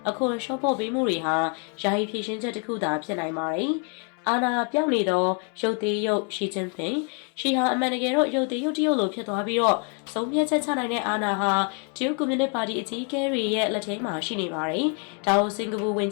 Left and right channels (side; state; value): right; quieter; 39.1 dB